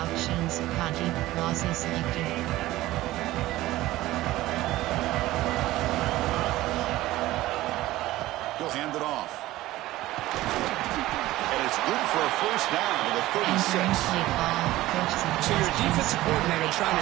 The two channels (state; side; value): quieter; left; 16.6 dB